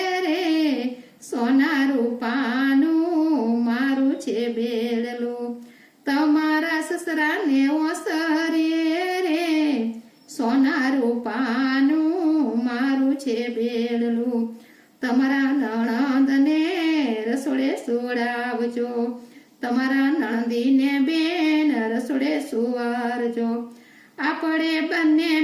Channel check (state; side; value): identical; both; correlation 1.00